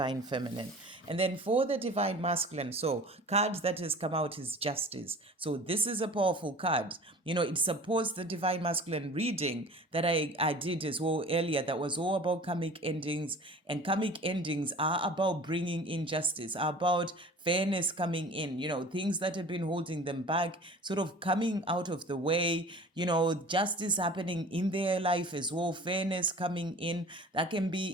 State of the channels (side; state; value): both; normal; correlation 0.43